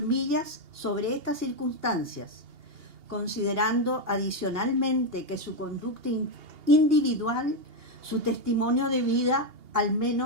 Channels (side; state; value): left; late; 2.8 ms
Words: Millas sobre estas circunstancias, considerando adicionalmente que su conducta individual, su testimonio de vida, al